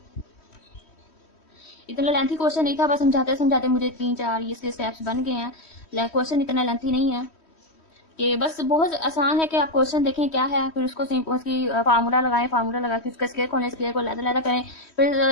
इतना लेंथी क्वेश्चन नहीं था, बस समझाते समझाते मुझे 3-4 इसके स्टेप्स बन गए हैं। क्वेश्चन इतना लेंथी नहीं है, कि बस बहुत आसान है कि आप क्वेश्चन देखें क्या है, फिर उसको उसकी फार्मूला लगाएं, फार्मूला लगा के उसका स्क्वायर खोलें, स्क्वायर को लैदा करें, फिर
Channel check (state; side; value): late; right; 3.1 ms